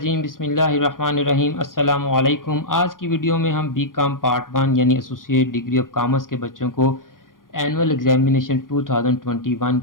बिस्मिल्लाहिर्रहमानिर्रहीम अस्सलामु अलैकुम। आज की वीडियो में हम बीकॉम पार्ट 1 यानी एसोसिएट डिग्री ऑफ कॉमर्स के बच्चों को एनुअल एग्जामिनेशन 2021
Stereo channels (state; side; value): late; right; 0.90 ms